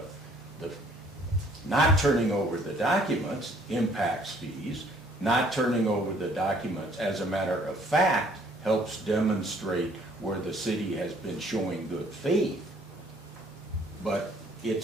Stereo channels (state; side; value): normal; both; correlation 0.60